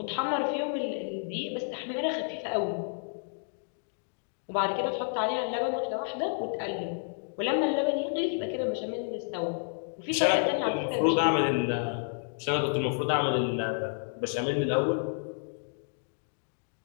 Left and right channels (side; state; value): right; silent; digital silence